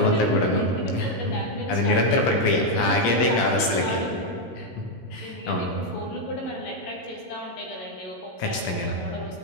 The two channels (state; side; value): late; right; 17 ms